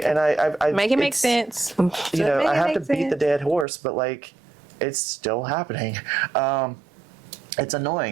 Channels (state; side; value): drops out; left; at 3.7 s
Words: make it make sense. You know, I have to beat the dead horse, but like, it's still happening. It's